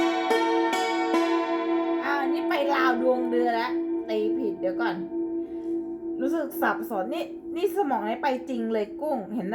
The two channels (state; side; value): identical; both; correlation 1.00